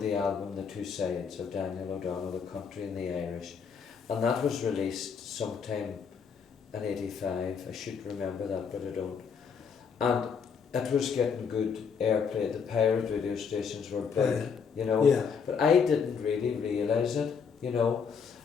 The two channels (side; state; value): right; quieter; 6.3 dB